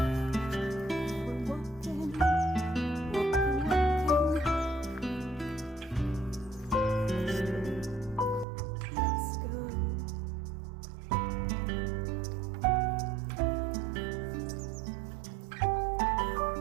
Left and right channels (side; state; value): left; drops out; at 8.5 s